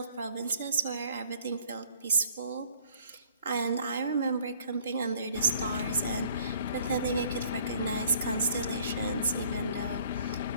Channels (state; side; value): inverted; both; correlation -0.57